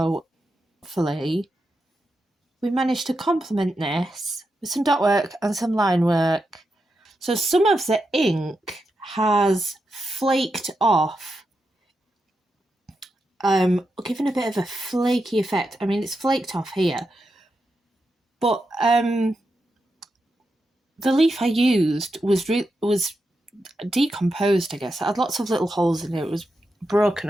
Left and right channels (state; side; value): normal; both; correlation 0.87